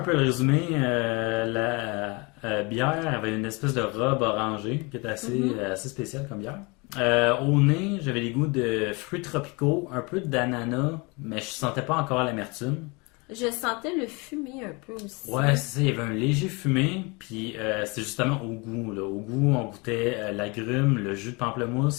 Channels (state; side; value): quieter; right; 28.2 dB